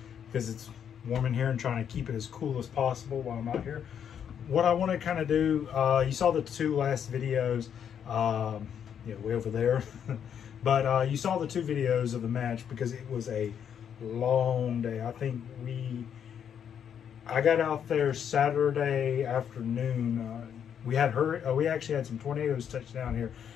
because it's warm in here and trying to keep it as cool as possible while I'm out here. What I want to kind of do, you saw the two last videos, way over there, but you saw the two videos of the match because it was a long day. I think I got out there Saturday afternoon. We actually had some tornadoes touch down here,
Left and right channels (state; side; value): quieter; right; 8.4 dB